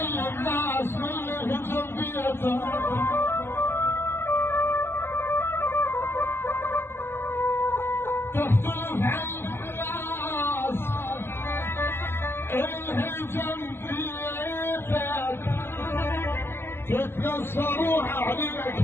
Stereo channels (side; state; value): right; late; 0.11 ms